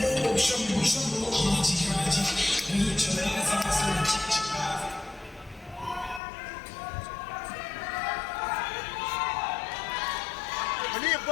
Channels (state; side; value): drops out; right; at 6.2 s